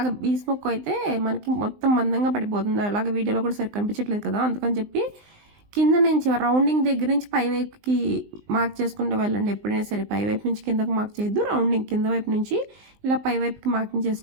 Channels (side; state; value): left; late; 19 ms